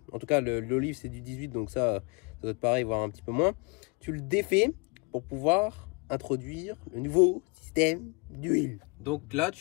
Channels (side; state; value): right; quieter; 31.2 dB